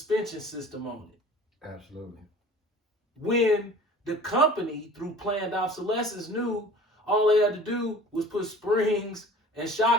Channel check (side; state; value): both; normal; correlation 0.45